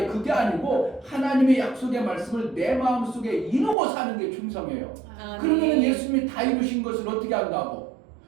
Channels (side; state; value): left; drops out; at 3.8 s